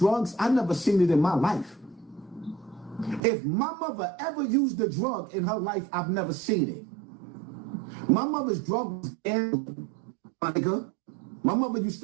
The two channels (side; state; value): left; drops out; at 3.2 s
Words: I never seen it in my life. If my mother ever used a drug in her life, I've never seen it. My mother's drug was gambling, my nigga. My mother used